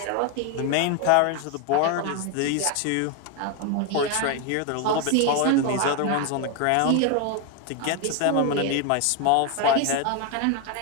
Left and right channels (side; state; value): both; different; correlation 0.01